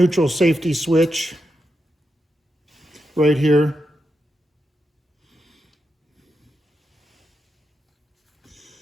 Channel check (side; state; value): both; normal; correlation 0.86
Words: safety switch right here.